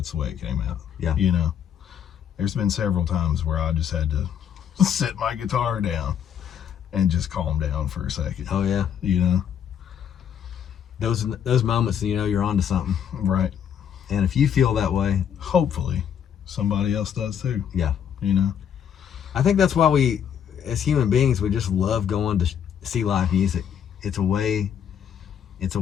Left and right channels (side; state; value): right; quieter; 8.6 dB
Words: the way it came out. Yeah. There's been several times where I just had to set my guitar down and just calm down for a second. oh yeah, those moments, you're onto something. Right. And if you feel that way, Hopefully somebody else does too. yeah, I I think that's why we, as human beings, we just love going to see live music. It's a way